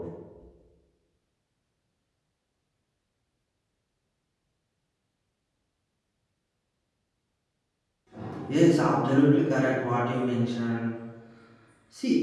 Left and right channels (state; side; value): identical; both; correlation 1.00